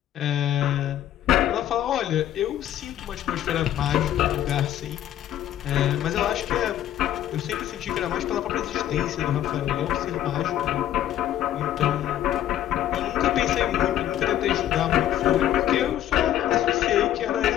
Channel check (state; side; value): quieter; right; 11.9 dB